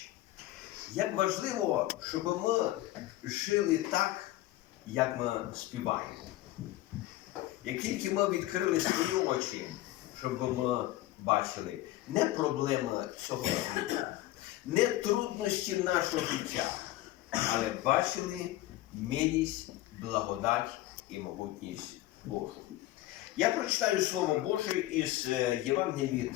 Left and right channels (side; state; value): right; quieter; 16.0 dB